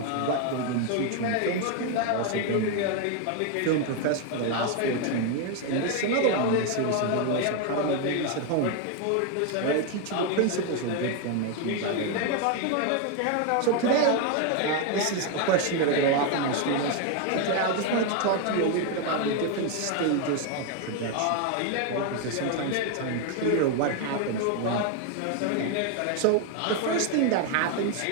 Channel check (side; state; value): both; different; correlation 0.01